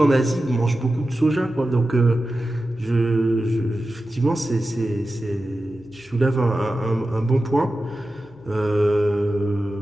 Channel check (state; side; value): noise; left; hum, 29 dB below the sound